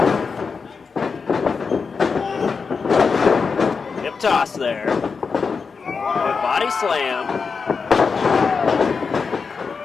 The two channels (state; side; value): quieter; right; 5.2 dB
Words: Hip toss there. Good body slam.